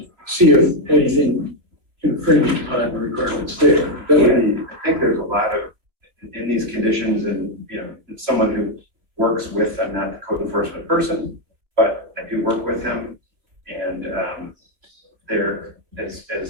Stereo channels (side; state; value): left; late; 2.9 ms